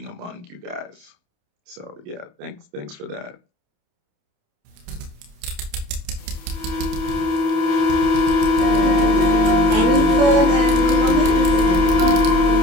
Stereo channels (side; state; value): left; late; 28 ms